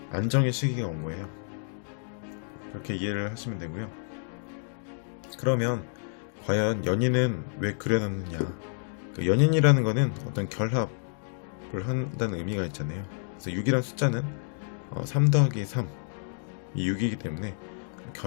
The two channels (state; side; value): silent; right; digital silence